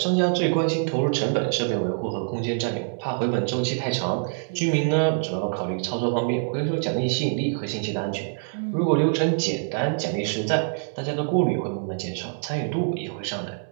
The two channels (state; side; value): silent; left; digital silence